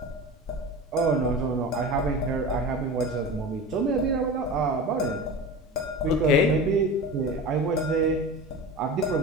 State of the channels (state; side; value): normal; both; correlation 0.31